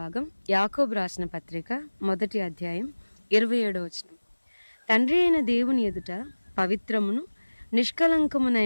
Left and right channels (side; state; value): both; inverted; correlation -1.00